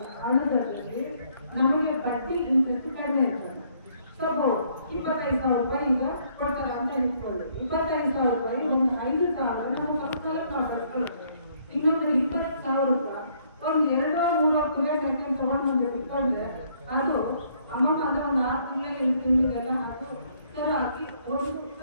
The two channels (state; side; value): inverted; both; correlation -0.67